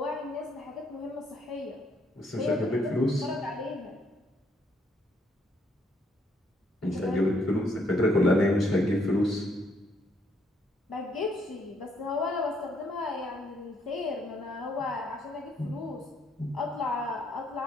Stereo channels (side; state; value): both; normal; correlation 0.70